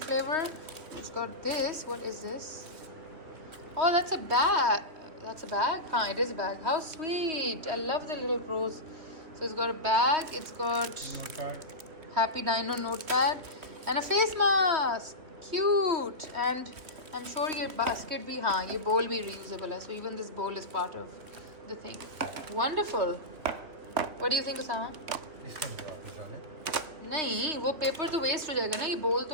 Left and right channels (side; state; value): left; late; 2.8 ms